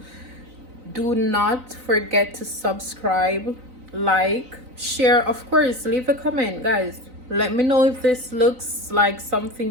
Do not forget to subscribe, like, share, of course, leave a comment, guys. Let me know if this looks like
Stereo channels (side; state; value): left; late; 3.9 ms